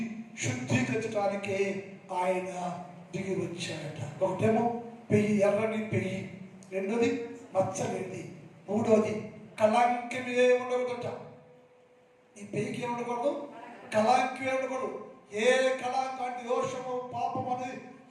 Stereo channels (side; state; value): both; identical; correlation 1.00